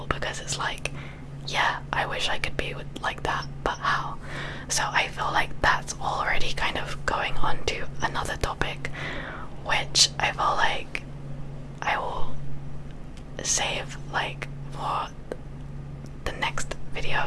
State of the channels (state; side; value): identical; both; correlation 1.00